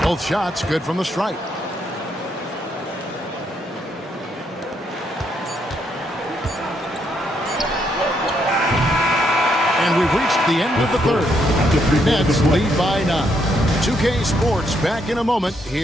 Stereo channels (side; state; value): both; normal; correlation 0.75